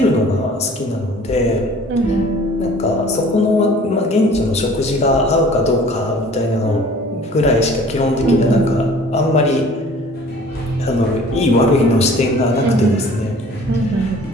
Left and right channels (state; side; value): normal; both; correlation 0.49